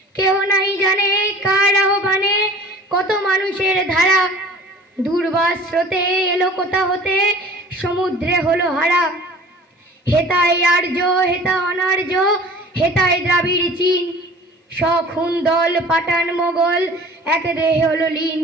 কেহ নাই জানে কার আহ্বানে কত মানুষের ধারা, দুর্বাস স্রোতে এলো কোথা হতে সমুদ্রে হলো হারা। হেতায় আর্য হেতা অনার্য, হেতায় দ্রাবিড় চীন, সখুন দল পাঠান মোগল এক দেহে হলো লীন।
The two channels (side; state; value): both; normal; correlation 0.45